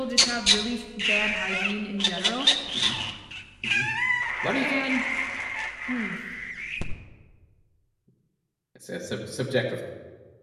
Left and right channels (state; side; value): identical; both; correlation 1.00